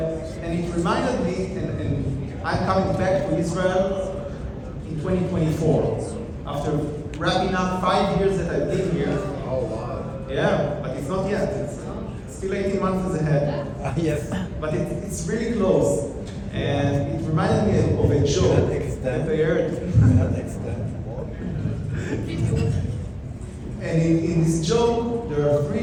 it reminded me, and I'm coming back to Israel in 2024, after wrapping up 5 years that I've been here. Oh, wow. Yeah, but it's not yet. It's still 18 months ahead. Yes. But it's really close. And it reminded me of a joke that I heard. And in this joke, there are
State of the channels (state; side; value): identical; both; correlation 1.00